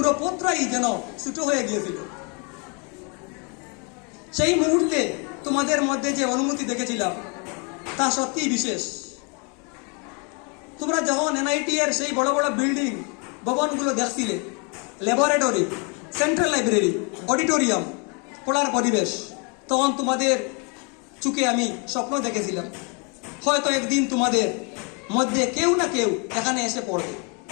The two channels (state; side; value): quieter; right; 34.3 dB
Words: পথটাই যেন ছোট হয়ে গিয়েছিল। সেই মুহূর্তে তোমাদের মধ্যে যে অনুমতি দেখেছিলাম তা সত্যিই বিশেষ। তোমরা যখন এনআইটি এর সেই বড় বড় বিল্ডিং ভবনগুলো দেখছিলে, ল্যাবরেটরি, সেন্ট্রাল লাইব্রেরি, অডিটোরিয়াম, পড়ার পরিবেশ, তখন তোমাদের চোখে আমি স্বপ্ন দেখেছিলাম হয়তো একদিন তোমাদের মধ্যে কেউ না কেউ এখানে এসে পড়বে।